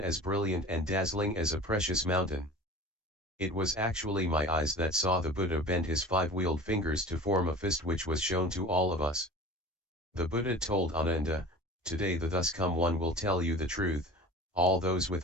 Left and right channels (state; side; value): normal; both; correlation 0.38